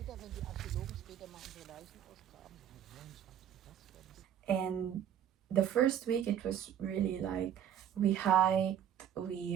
And the first week it was really like we hiked,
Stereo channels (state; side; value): quieter; left; 9.6 dB